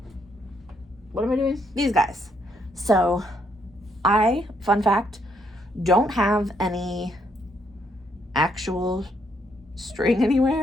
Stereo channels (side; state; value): both; normal; correlation 0.73